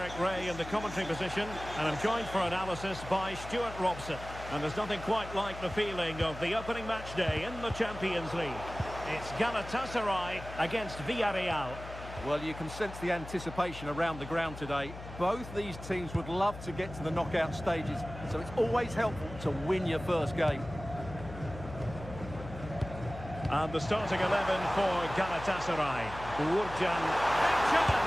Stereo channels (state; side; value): noise; left; hum, 12 dB below the sound